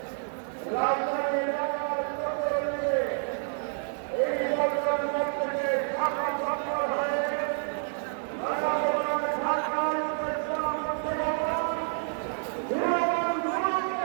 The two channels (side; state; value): left; silent; 59 dB below the other